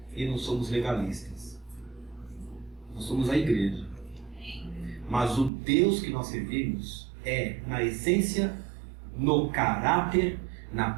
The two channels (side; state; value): left; drops out; at 5.5 s